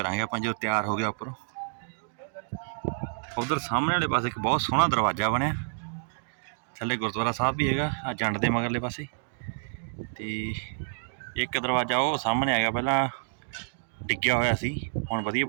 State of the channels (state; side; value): silent; left; digital silence